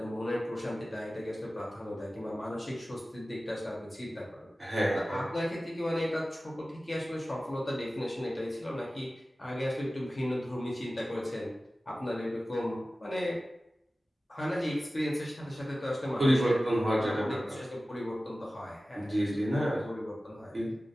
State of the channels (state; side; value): normal; both; correlation 0.96